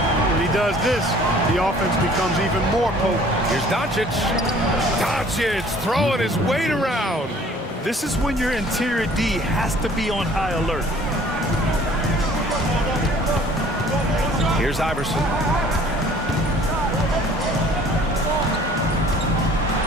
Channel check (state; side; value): normal; both; correlation 0.53